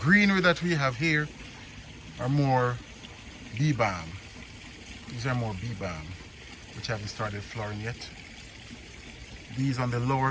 that we have here are more bee balm. These are more bee balm, which haven't started flowering yet. These on the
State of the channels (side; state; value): both; identical; correlation 1.00